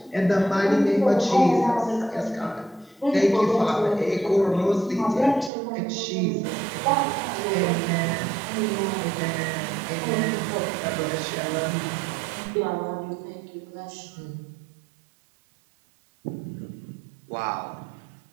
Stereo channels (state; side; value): drops out; left; at 5.5 s